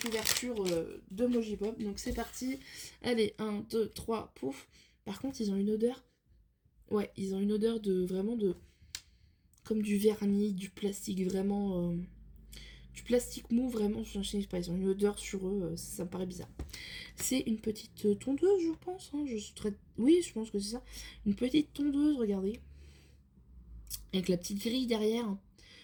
ouverture de Mojipop, donc c'est parti. Allez, 1, 2, 3, pouf. Par contre, ils ont une odeur, ouais, ils ont une odeur de, vraiment de... comme du vernis, du plastique, vraiment... du plastique mou, vraiment, je sais pas, ils ont une odeur sur eux, ça me paraît bizarre. C'est une petite tondeuse, je pense, hein, oui, je pense que c'est ça. Une petite tondeuse, regardez. Avec la petite grille derrière.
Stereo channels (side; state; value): both; identical; correlation 1.00